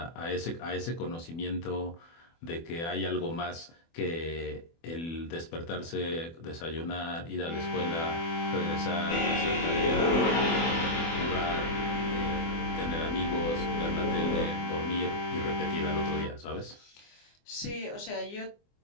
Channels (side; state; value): right; late; 24 ms